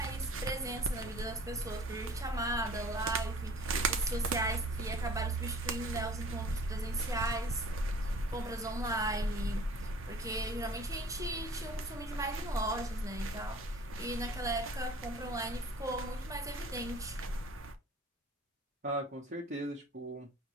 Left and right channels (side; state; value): both; normal; correlation 0.48